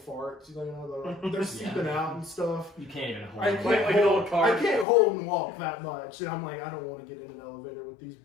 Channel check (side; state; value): right; drops out; at 4.9 s